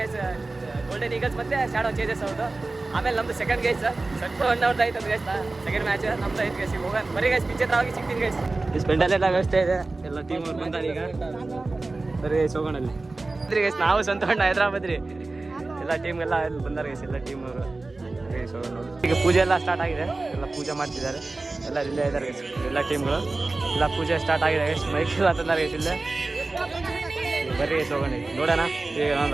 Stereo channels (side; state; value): left; quieter; 3.3 dB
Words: ಗೈಸ್, ಗೋಲ್ಡನ್ ಈಗಲ್ಸ್ ಮತ್ತೆ ಶಾಡೋ ಚೇಜಸ್ ಅವ್ರದ್ದು. ಆಮೇಲೆ ನಮ್ದು ಸೆಕೆಂಡ್ ಗೈಸ್, ಸೆಟ್ ಅವ್ರದ್ದು ಆಯ್ತು ಗೈಸ್. ಸೆಕೆಂಡ್ ಮ್ಯಾಚ್ ನಮ್ದು ಐದು ಗೈಸ್. ಹೋಗೋಣ ಬರೀ ಗೈಸ್, ಪಿಚ್ ಹತ್ರ ಹೋಗಿ ಸಿಗ್ತೀನಿ ಗೈಸ್. ಸ್ಪೆಂಡಲ್ಲೆಲ್ಲ ವ್ಯವಸ್ಥೆ ಇದೆ, ಎಲ್ಲ ಟೀಮ್ ಅವ್ರು ಬಂದಾರೆ. ಈಗ ಬರೀ ಗೈಸ್ ಹೋಗೋಣ ಅಲ್ಲಿ ಗೈಸ್. ನಾವು ಸ್ವಂತ ಹೈದ್ರಾಬಾದ್ ರೀ, ಎಲ್ಲ ಟೀಮ್ ಎಲ್ಲ ಇಲ್ಲಿ ಬಂದಾರೆ ಗೈಸ್, ಎಲ್ಲ ಟೀಮ್ ಅವರು ಗೈಸ್ ಹೋಗೋಣ. ಈಗ ಪೂಜೆ ಎಲ್ಲ ಸ್ಟಾರ್ಟ್ ಆಗಿದೆ, ಎಲ್ಲ ಪೂಜೆ ಮಾಡ್ತಿದ್ದಾರೆ, ಎಲ್ಲ ಇಲ್ಲೇ ಇದ್ದಾರೆ ಗೈಸ್. ಎಲ್ಲ ಟೀಮ್ಗಳು ಎಲ್ಲ ಪೂಜೆ ಸ್ಟಾರ್ಟ್ ಆಗಿದೆ ಗೈಸ್. ಮೈಕ್ ಎಲ್ಲ ತಂದಾರೆ ಗೈಸ್ ಇಲ್ಲೇ. ಬರ್ರಿ ಗೈಸ್ ಹೋಗೋಣ, ನೋಡೋಣ. ಈಗ